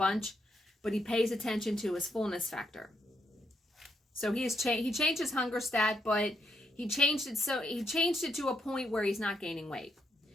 but he pays attention to his fullness factor. So he changed his hunger stat, but he changed it to a point where he's not gaining weight.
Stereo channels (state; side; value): normal; both; correlation 0.78